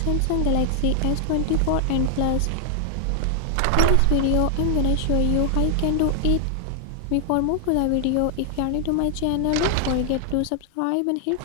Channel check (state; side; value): different; both; correlation 0.00